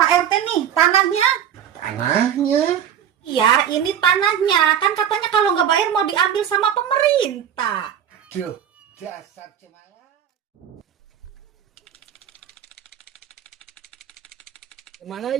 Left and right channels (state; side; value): quieter; left; 9.4 dB